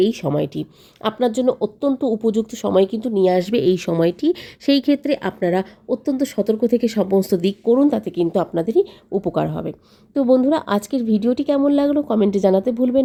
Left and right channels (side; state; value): both; identical; correlation 1.00